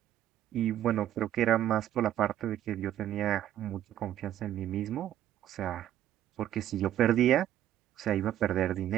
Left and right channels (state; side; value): quieter; left; 11.9 dB